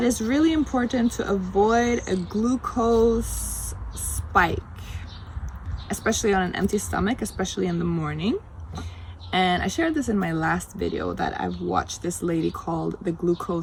it's really important to avoid a glucose spike, especially on an empty stomach, especially in the morning. And I shared this in my last video that I've watched this lady called the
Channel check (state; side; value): identical; both; correlation 1.00